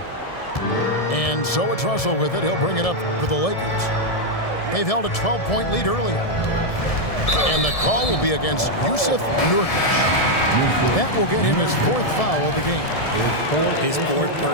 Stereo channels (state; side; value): late; right; 1.7 ms